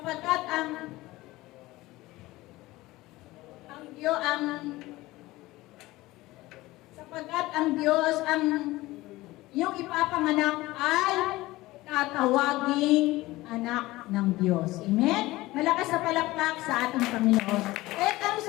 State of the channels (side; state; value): right; quieter; 18.8 dB